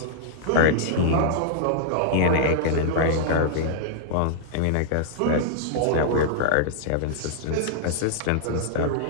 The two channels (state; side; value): different; both; correlation -0.01